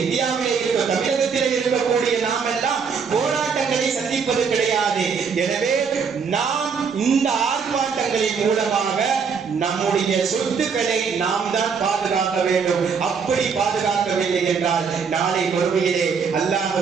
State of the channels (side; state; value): left; quieter; 5.9 dB